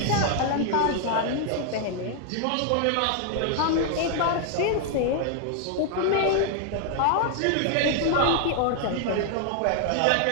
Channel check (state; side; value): different; both; correlation 0.00